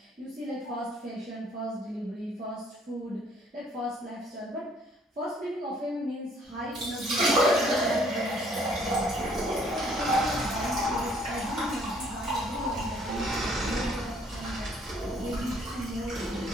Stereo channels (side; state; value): both; normal; correlation 0.62